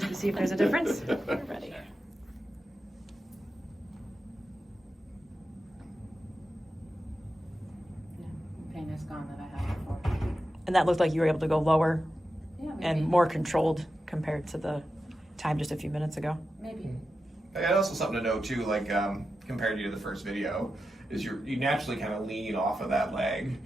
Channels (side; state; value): both; normal; correlation 0.90